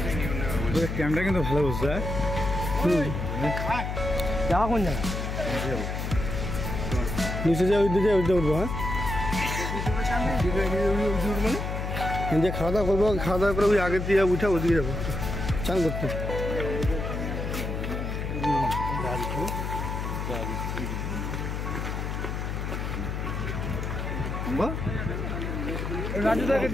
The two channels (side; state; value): left; noise; hum, 3 dB below the sound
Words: Camera কিন্তু ভালো বুঝছে। যাওয়া কোন জায়গা? নিচে যাও, ওই দিকে উঠবো। হ্যাঁ, যে খাওয়া দাওয়া করবো, খাওয়া দাওয়া করে ওই আগের দিয়ে উঠে ওদিকে যাবো চান করতে।